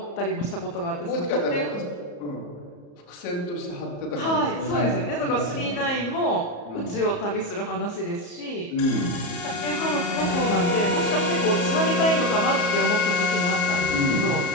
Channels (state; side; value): late; right; 34 ms